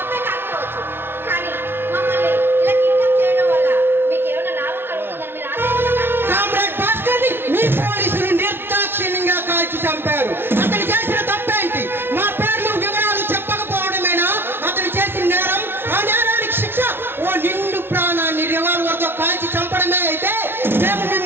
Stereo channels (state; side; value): late; left; 0.11 ms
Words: కామ్రేడ్ భాస్కర్ ని మీ పోలీసులు నిర్దాక్షిణ్యంగా కాల్చి చంపారు. అతను చేసిన తప్పేంటి? మా పేర్లు వివరాలు చెప్పకపోవడమేనా అతను చేసిన నేరం? ఆ నేరానికి శిక్ష ఓ నిండు ప్రాణాన్ని రివాల్వర్ తో కాల్చి చంపడమే అయితే మేము